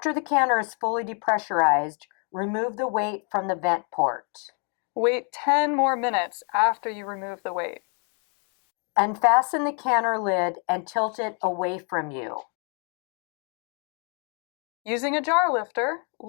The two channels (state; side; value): quieter; right; 39.7 dB